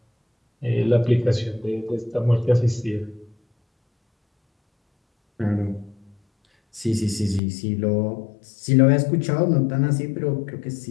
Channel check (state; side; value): drops out; right; at 7.4 s